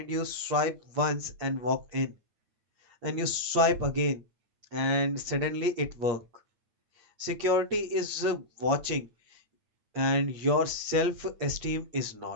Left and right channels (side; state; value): left; late; 8.6 ms